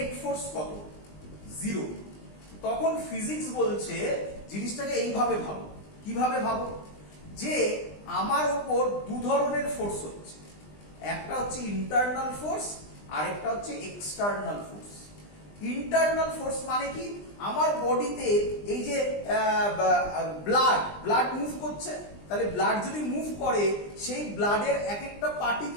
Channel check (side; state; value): right; late; 20 ms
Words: ফোর্স কত? 0। তখন ফিজিক্স বলছে জিনিসটাকে এইভাবে ভাবো। কিভাবে ভাবো? যে আমার ওপর দু ধরনের ফোর্স হচ্ছে, একটা হচ্ছে ইন্টারনাল ফোর্স আর একটা হচ্ছে এক্সটার্নাল ফোর্স। ইন্টারনাল ফোর্স মানে কি? আমার বডিতে এই যে ব্লাড মুভ করছে, তাহলে ব্লাড যদি মুভ করে, সেই ব্লাডের এক একটা